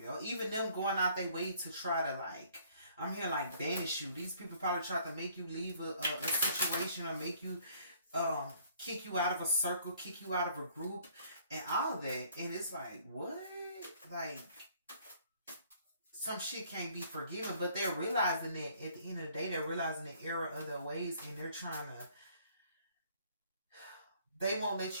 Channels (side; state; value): both; inverted; correlation -0.60